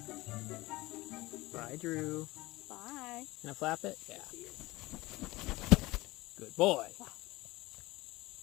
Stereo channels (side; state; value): right; quieter; 19.9 dB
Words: Bye, Drew. Bye. Can I flap it? Yeah. Good boy.